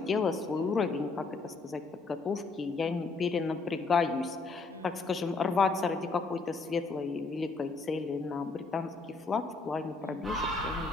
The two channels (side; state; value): right; quieter; 3.9 dB